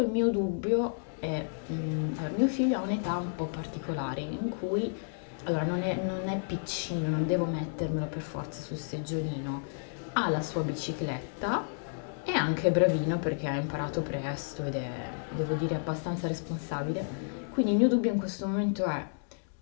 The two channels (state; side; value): silent; right; digital silence